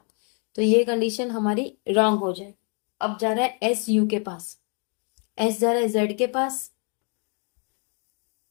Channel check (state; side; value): quieter; right; 39.1 dB